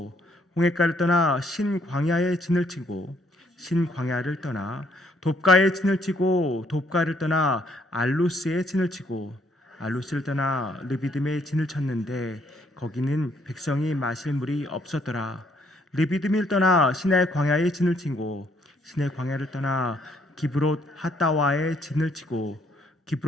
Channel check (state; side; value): normal; both; correlation 0.68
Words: 홍해가를 떠나 신광야에 진을 치고 신광야를 떠나 돕가에 진을 치고 돕가를 떠나 알루스에 진을 치고 알루스를 떠나 르비딤에 진을 쳤는데 거기는 백성이 마실 물이 없었더라. 르비딤을 떠나 시내 광야에 진을 치고 시내 광야를 떠나 기브롯 핫다와에 진을 치고